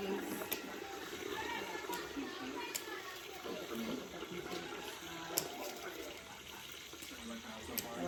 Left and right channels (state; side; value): identical; both; correlation 1.00